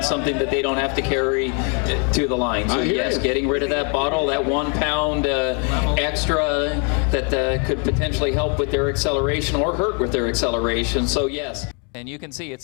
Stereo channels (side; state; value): right; quieter; 36.9 dB